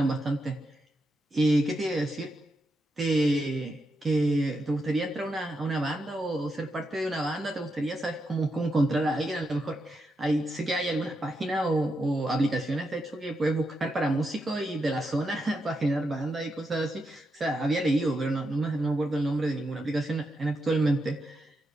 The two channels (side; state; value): both; normal; correlation 0.85